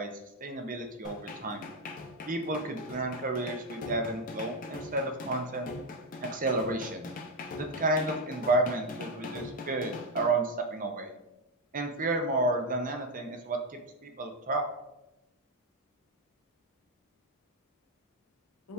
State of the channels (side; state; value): both; normal; correlation 0.07